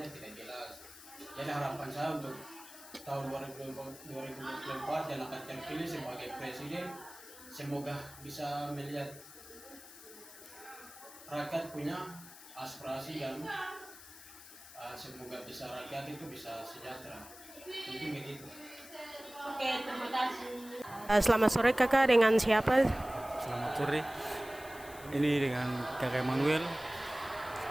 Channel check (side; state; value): left; noise; hiss, 17 dB below the sound